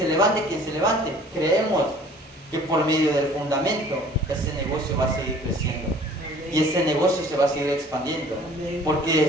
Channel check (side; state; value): both; normal; correlation 0.51